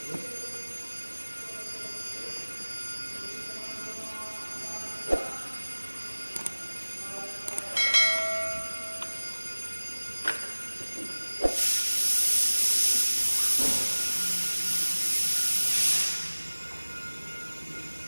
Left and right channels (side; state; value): both; inverted; correlation -1.00